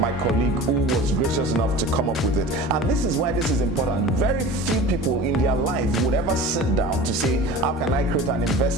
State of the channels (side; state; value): both; normal; correlation 0.37